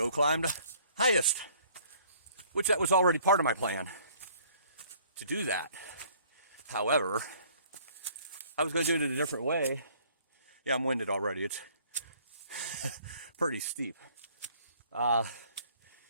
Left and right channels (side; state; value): both; inverted; correlation -0.57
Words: climb the highest, which that was already part of my plan to do that. However, I was gonna do it in a different way. Yeah, I'm winded already. It's pretty steep. In